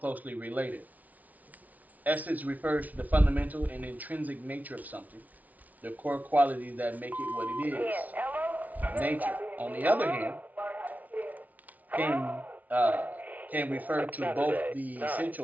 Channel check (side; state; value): left; late; 0.074 ms